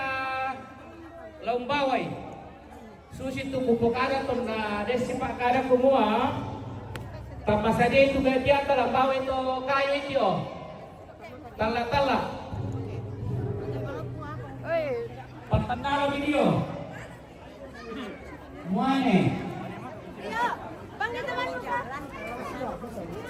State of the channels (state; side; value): identical; both; correlation 1.00